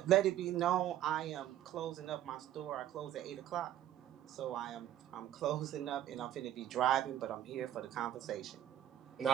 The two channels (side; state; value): left; quieter; 11.5 dB